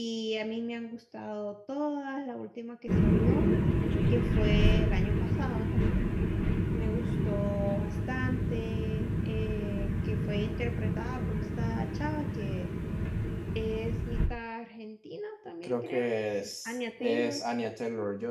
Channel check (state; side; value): identical; both; correlation 1.00